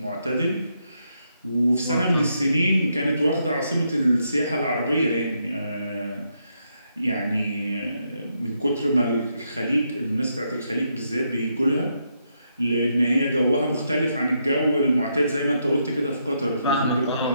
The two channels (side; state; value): both; inverted; correlation -0.79